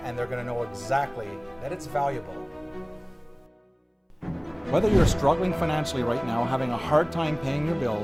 and they're going to know exactly that it's valuable. Whether you're struggling financially right now, having a hard time paying your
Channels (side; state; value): both; identical; correlation 1.00